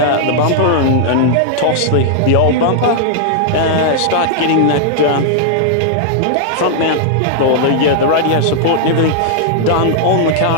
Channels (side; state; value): both; different; correlation -0.01